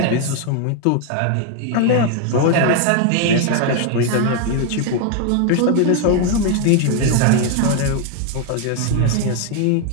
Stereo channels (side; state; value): both; different; correlation 0.01